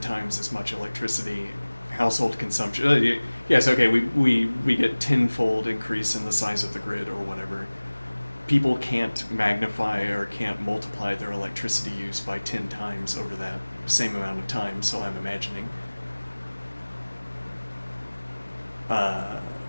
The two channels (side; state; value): both; inverted; correlation -1.00